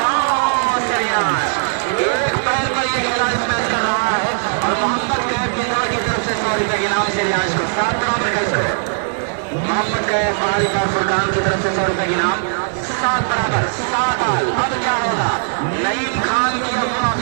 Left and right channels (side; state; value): left; silent; digital silence